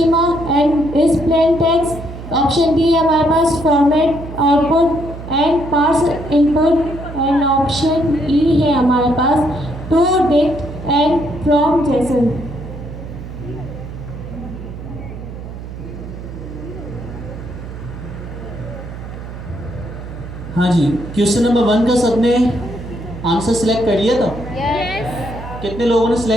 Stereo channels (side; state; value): right; noise; hum, 11 dB below the sound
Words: and is plain text. Option D है हमारे पास format output and parse input. And option E है हमारे पास to dict and from JSON. हाँ जी, क्वेश्चन नंबर 1 का सबने आंसर सिलेक्ट कर लिया था? यस। कितने लोगों ने